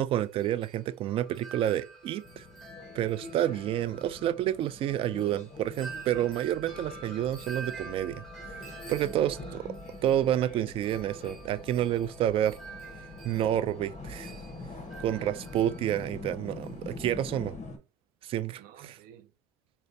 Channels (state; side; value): quieter; left; 10.3 dB